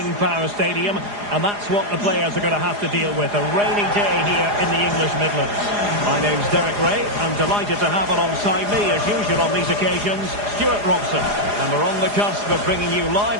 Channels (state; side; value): late; left; 4.9 ms